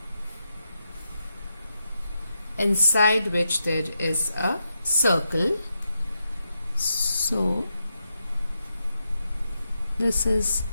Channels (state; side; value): inverted; both; correlation -0.85